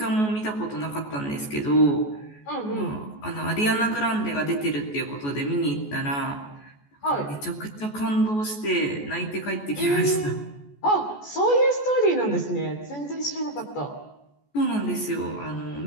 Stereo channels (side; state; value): right; late; 14 ms